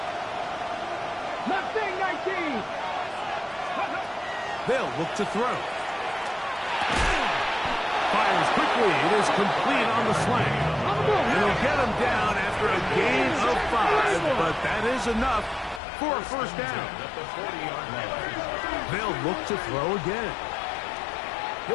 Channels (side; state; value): right; drops out; at 15.8 s